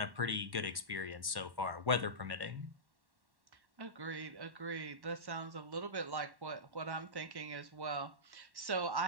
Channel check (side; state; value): left; late; 1.1 ms